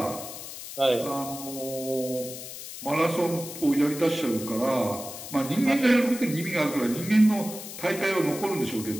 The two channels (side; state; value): left; noise; hiss, 11 dB below the sound